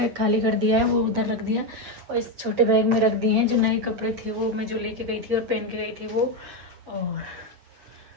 खाली कर दिया है, वो उधर रख दिया, और इस छोटे बैग में रख दिए हैं जो नए कपड़े थे, वो मैं जो लेके गई थी और पहन के गई थी वो। और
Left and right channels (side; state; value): left; late; 8.4 ms